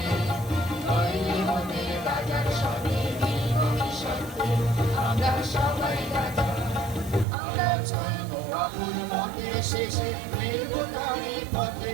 নইলে মোদের রাজার সঙ্গে মিলব কি শর্তে। আমরা সবাই রাজা, আমরা চলবো আকুল মতে শেষে মিলব তারই পথে।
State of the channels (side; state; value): left; drops out; at 7.2 s